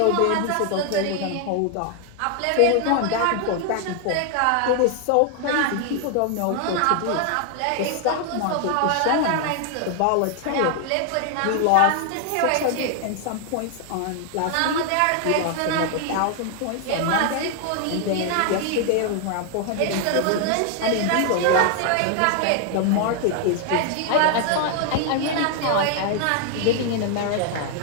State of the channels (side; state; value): both; different; correlation 0.00